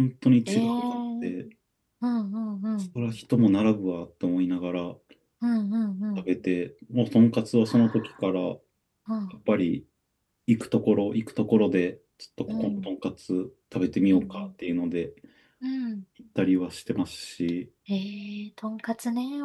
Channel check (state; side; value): identical; both; correlation 1.00